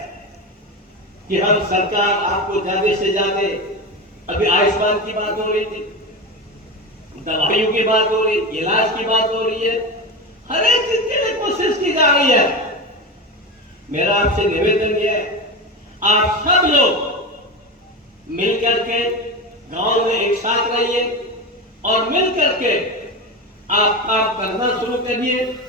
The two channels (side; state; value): both; normal; correlation 0.22